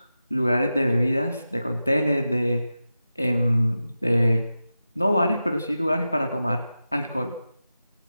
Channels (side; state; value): both; inverted; correlation -0.92